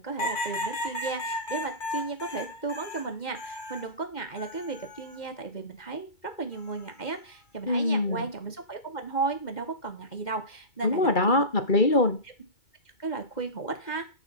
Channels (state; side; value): late; right; 2.1 ms